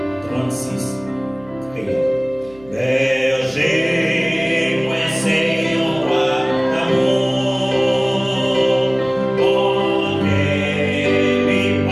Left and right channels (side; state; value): right; noise; hum, 24 dB below the sound